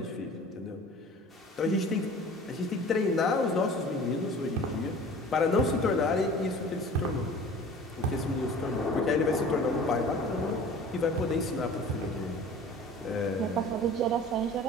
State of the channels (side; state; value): both; normal; correlation 0.43